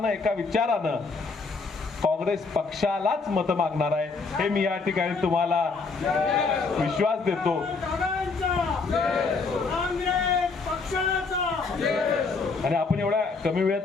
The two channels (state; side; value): quieter; right; 4.3 dB